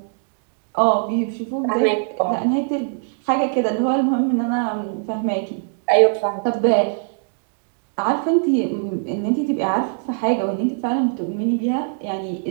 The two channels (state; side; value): silent; left; 65 dB below the other